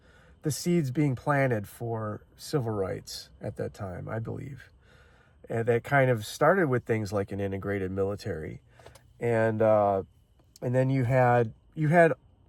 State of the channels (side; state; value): both; identical; correlation 1.00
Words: the seeds being planted for civil rights at that time, I believe. And that kind of started with things like an integrated military. And And then you had